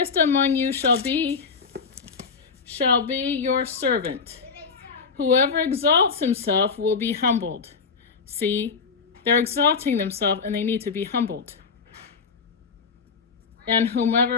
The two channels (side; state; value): right; quieter; 5.2 dB